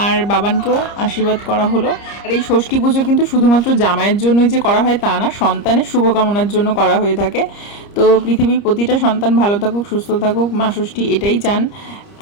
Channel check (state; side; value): late; right; 30 ms